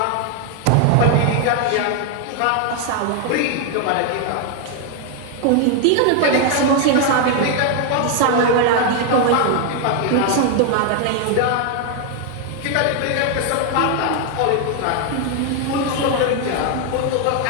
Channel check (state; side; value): different; both; correlation 0.01